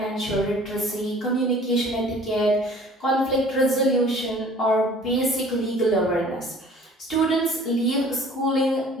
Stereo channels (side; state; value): both; normal; correlation 0.50